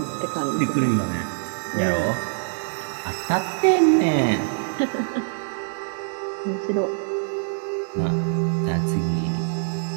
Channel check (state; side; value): silent; left; 62 dB below the other